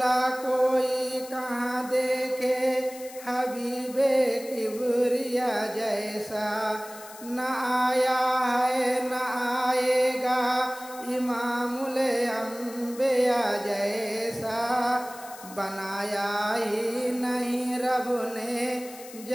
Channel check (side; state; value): left; noise; hiss, 17 dB below the sound